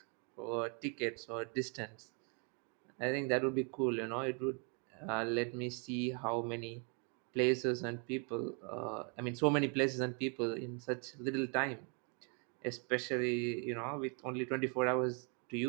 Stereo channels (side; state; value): left; quieter; 37.3 dB